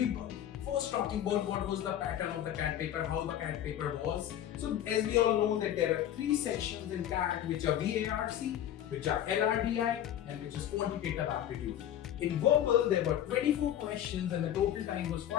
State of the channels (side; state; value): right; quieter; 11.1 dB